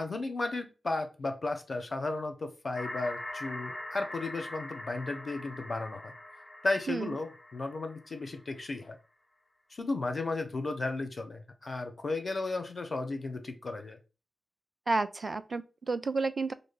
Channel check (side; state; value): both; normal; correlation 0.91